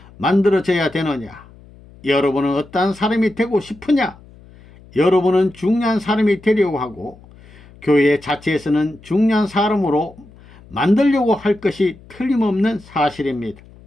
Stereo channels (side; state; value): left; noise; hum, 23 dB below the sound